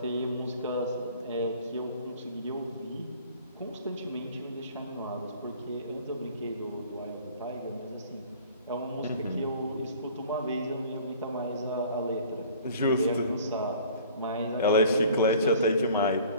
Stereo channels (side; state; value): both; inverted; correlation -0.49